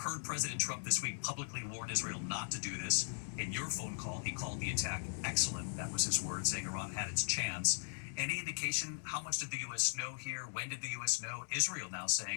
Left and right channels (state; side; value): silent; right; digital silence